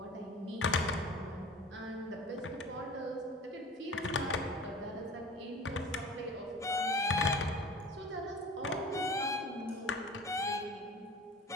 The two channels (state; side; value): normal; both; correlation 0.39